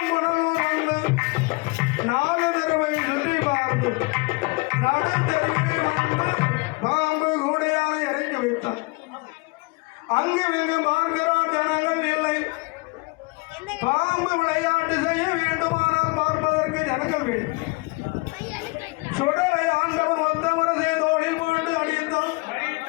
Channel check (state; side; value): quieter; right; 26.7 dB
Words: வந்து 4 தடவை சுற்றி பார்த்து நடுத்தருவில் வந்து பாம்பு கூடையானை இறக்கி வைத்தார். அங்கு இங்கு பார்க்கிறார், ஜனங்கள் இல்லை. பாம்பு விளையாட்டு செய்ய வேண்டுமானால் பார்ப்பதற்கு ஜனங்கள் வேண்டும். சுடலை ஆண்டவன் வந்த முரசை தோளில் போட்டு அடித்தான்.